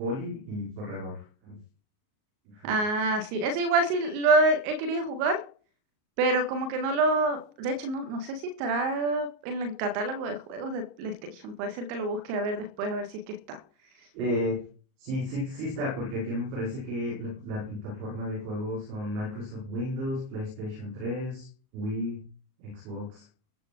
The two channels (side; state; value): left; late; 38 ms